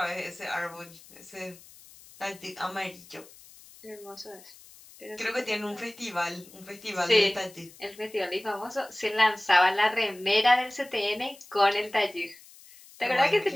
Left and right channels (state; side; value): noise; left; hiss, 22 dB below the sound